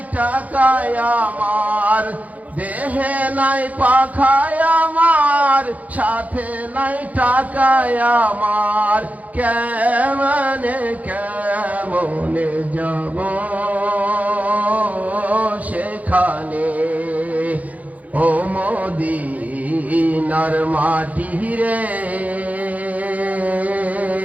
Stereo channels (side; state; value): left; late; 0.074 ms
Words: টাকায় আমার। দেহে নাই পাখায় আমার, সাথে নাই টাকায় আমার। কেমনে কেমনে যাব সেখানে, ও মদিনার মাটি রে।